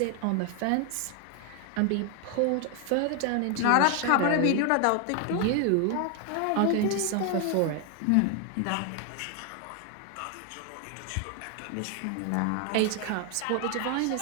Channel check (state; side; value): different; both; correlation 0.01